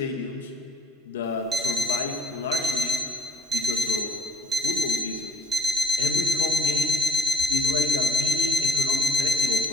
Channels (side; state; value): both; normal; correlation 0.64